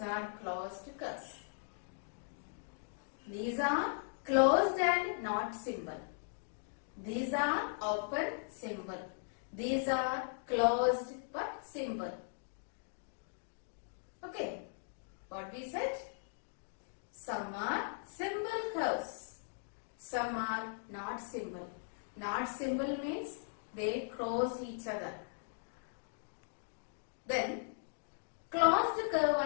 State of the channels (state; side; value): silent; right; digital silence